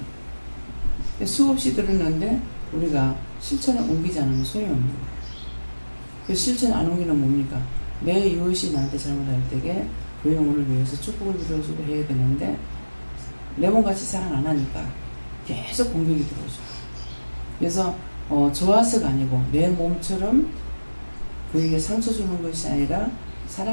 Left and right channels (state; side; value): inverted; both; correlation -1.00